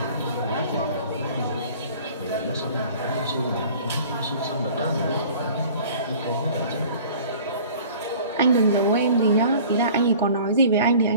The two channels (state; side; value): inverted; both; correlation -0.46